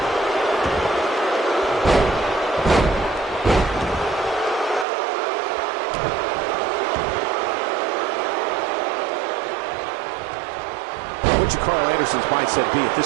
What should Carl Anderson's mindset be at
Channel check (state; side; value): drops out; left; at 4.9 s